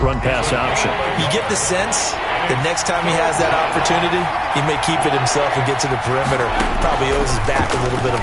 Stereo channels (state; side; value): identical; both; correlation 1.00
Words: option. You get the sense the next time he has that opportunity, he may keep it himself and get to the perimeter. Probably owes his back a little bit